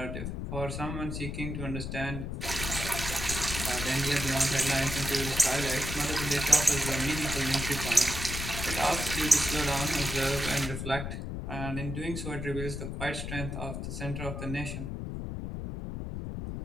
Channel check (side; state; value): left; noise; rumble, 5 dB below the sound